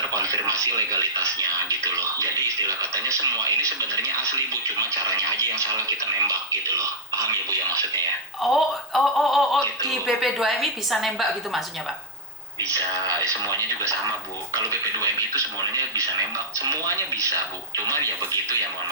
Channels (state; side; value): noise; left; hiss, 27 dB below the sound